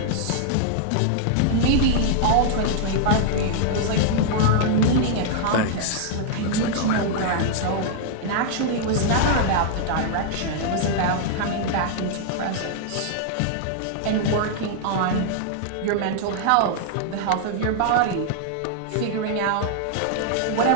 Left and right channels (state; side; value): different; both; correlation -0.01